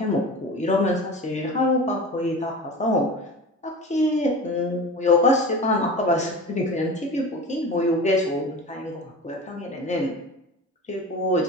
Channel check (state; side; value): normal; both; correlation 0.33